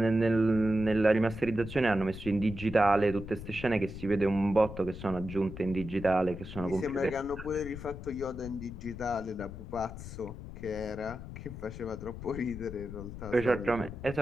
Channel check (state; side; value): noise; left; rumble, 11 dB below the sound